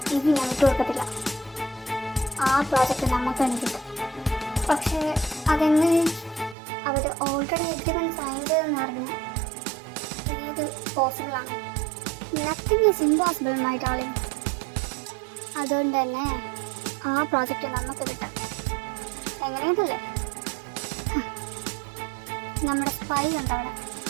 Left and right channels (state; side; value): drops out; left; at 6.6 s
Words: ഇത് ഞാൻ വിട്ടുകൊടുക്കത്തില്ല. ആ പ്രോജക്റ്റ് നമുക്ക് തന്നെ കിട്ടും. പക്ഷേ അതെങ്ങനെ? അവർ ഓൾറെഡി എഗ്രിമെൻറ്റ് സൈൻ ചെയ്തെന്ന് പറഞ്ഞാൽ ഇത് പോസിബിളാണ്. Nothing is impossible my darling. അതുകൊണ്ട് തന്നെ ആ പ്രോജക്റ്റ് നമുക്ക് കിട്ടാം. എങ്ങനെയതല്ലേ? നമ്മുടെ സ്പൈ ഉണ്ട് അവിടെ.